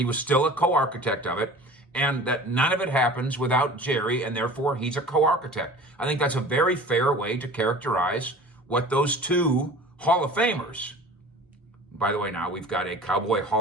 was still a co-architect of it, and that none of it happens without Jerry, and therefore he's a co-architect. I think that's a very fair way to characterize what those two Hall of Famers. By the way, now we've got a Cowboy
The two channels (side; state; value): both; normal; correlation 0.41